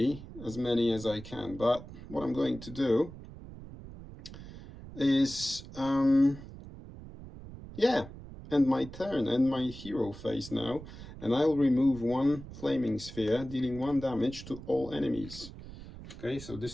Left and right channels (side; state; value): right; noise; rumble, 14 dB below the sound